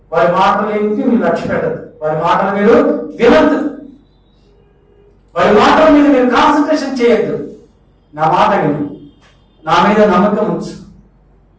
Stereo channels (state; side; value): identical; both; correlation 1.00